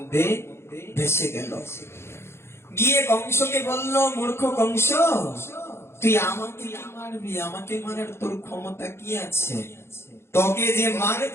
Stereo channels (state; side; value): late; right; 0.12 ms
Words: ভেসে গেল। গিয়ে কংসকে বলল, মূর্খ কংস, তুই আমাকে মারবি? আমাকে মারার তোর ক্ষমতা কি আছে? তোকে যে